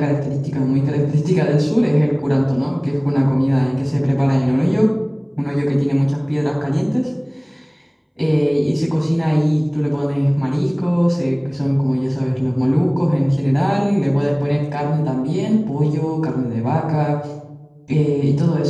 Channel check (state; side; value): identical; both; correlation 1.00